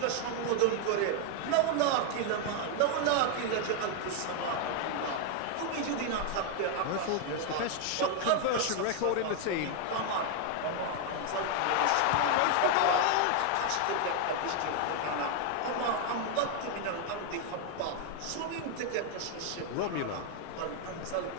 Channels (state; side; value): different; both; correlation 0.00